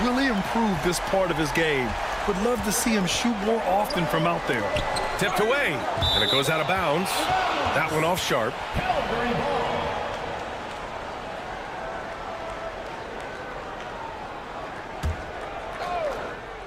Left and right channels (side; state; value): both; identical; correlation 1.00